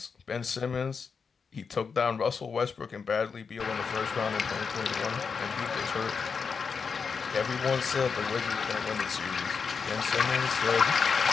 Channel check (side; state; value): right; quieter; 5.6 dB